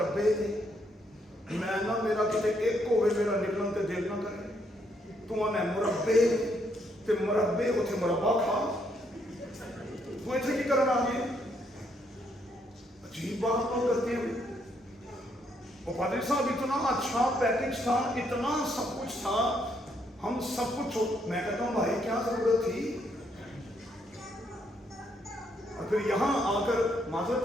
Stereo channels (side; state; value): both; normal; correlation 0.73